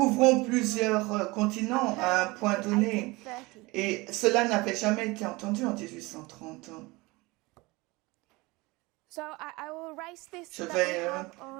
plusieurs continents à un point donné. Et cela n'avait jamais été entendu en 1830. So I will erase this Je that vais we have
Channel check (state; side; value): quieter; left; 23.2 dB